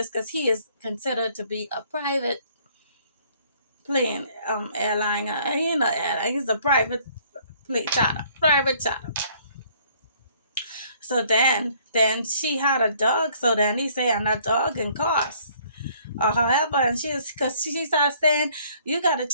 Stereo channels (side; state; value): both; inverted; correlation -0.61